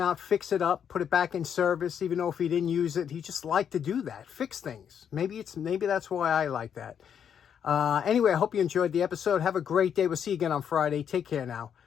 out, fix it up, put it back in service, even though if he didn't use it, he just liked to do that, fix things. Maybe that's why I like that. Anyway, I hope you enjoyed the episode. Have a great day. We'll see you again on Friday. Take care now.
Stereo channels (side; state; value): right; quieter; 8.2 dB